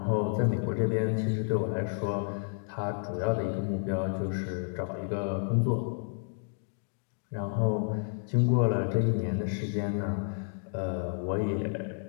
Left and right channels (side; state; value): right; silent; 57 dB below the other